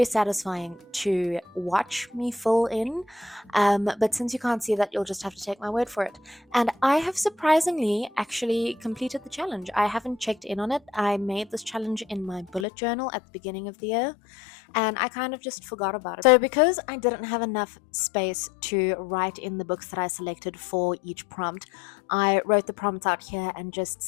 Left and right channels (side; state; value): right; drops out; at 12.7 s